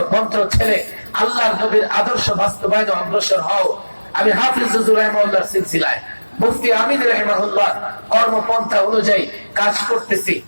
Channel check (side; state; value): both; inverted; correlation -1.00